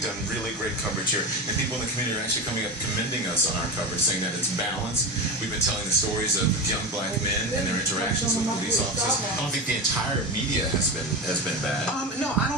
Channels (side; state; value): both; normal; correlation 0.22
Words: really great coverage here, and people in the community are actually coming up commending us on our coverage, saying that it's balanced. We've been telling the stories of young black men and their interactions with police officers. I don't think the entire media has been bad. No, I